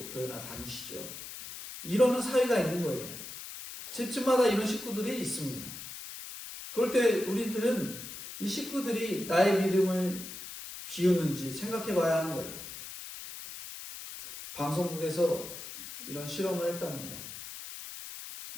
교회나 다니시죠. 이러는 사회가 있는 거예요. 집집마다 이런 식구들이 있습니다. 그럴 때 우리들은 이 식구들이 나의 믿음을 비우는지 생각해 봐야 하는 거예요. 방송국에서 이런 실험을 했답니다.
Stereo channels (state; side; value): noise; left; hiss, 11 dB below the sound